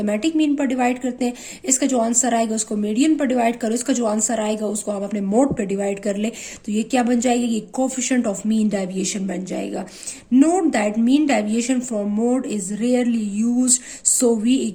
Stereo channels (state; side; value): identical; both; correlation 1.00